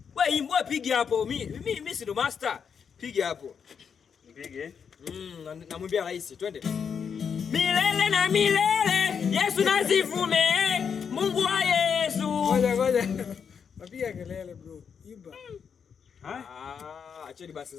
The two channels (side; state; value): right; quieter; 6.8 dB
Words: Wewe piga hapo. Mimi si ndo master. Piga hapo. Nipige? Namwambia rais, twende. Milele na milele, Yesu nazivume, Mungu wa Yesu. Ngoja. Napiga kelele bro. Imba. Acheni basi